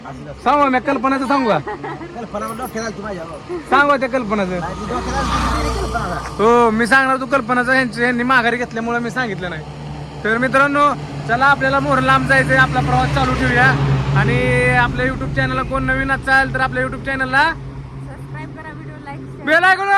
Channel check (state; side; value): identical; both; correlation 1.00